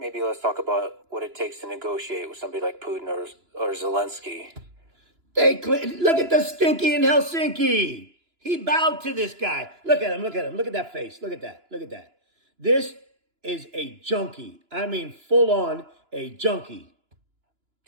let's talk about what it takes to negotiate with somebody like Putin or Zelensky. Look at the Stinky in Helsinki. He bowed to this guy. Look at him. Look at that face. Look at that. This is a junkie. I mean, full on a junkie.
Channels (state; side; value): late; left; 2.9 ms